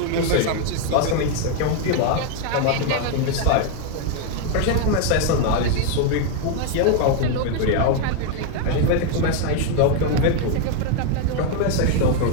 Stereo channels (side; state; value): both; different; correlation 0.00